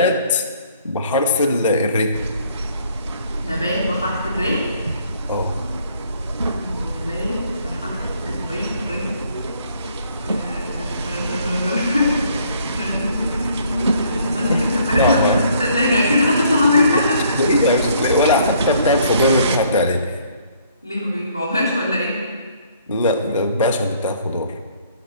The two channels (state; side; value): inverted; both; correlation -0.63